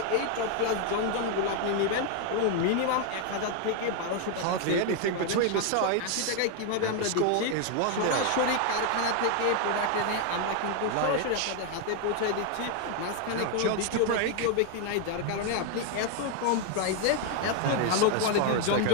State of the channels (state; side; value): different; both; correlation 0.01